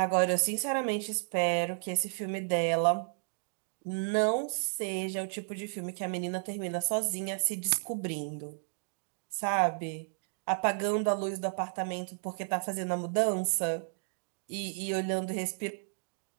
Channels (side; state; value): left; silent; 56 dB below the other